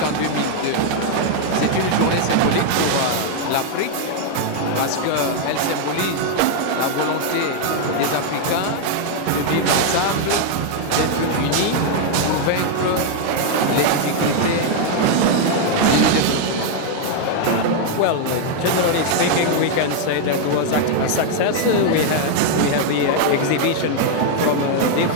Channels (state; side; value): different; both; correlation 0.00